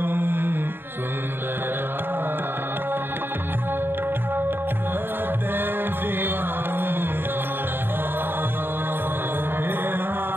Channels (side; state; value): left; late; 0.10 ms